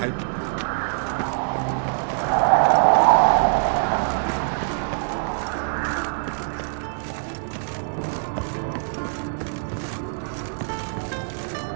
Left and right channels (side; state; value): left; silent; 63 dB below the other